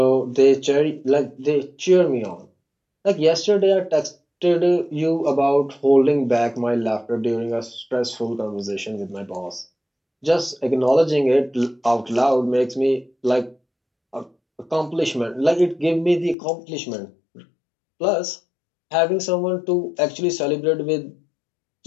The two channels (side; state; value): right; drops out; at 16.4 s